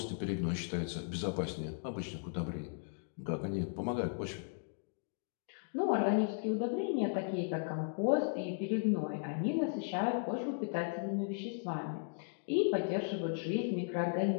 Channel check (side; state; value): right; silent; digital silence